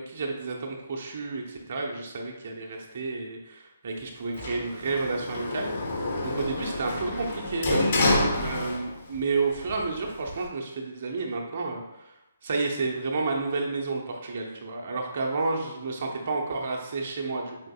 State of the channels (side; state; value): both; inverted; correlation -0.76